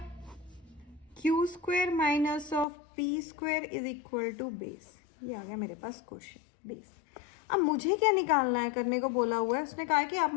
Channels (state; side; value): drops out; right; at 2.7 s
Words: q square minus of P square is equal to base. ये आ गया मेरे पास क्वेश्चन बेस। अब मुझे क्या निकालना है, करने को बोला हुआ है, उसने कहा कि आप